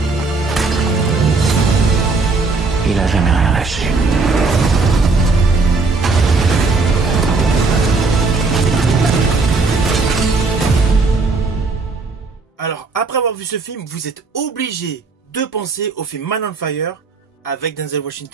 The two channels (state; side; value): quieter; left; 3.9 dB